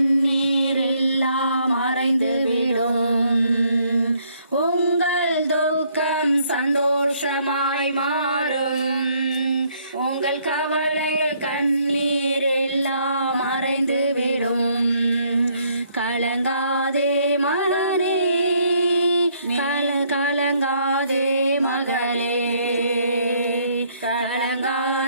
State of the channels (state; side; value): inverted; both; correlation -0.67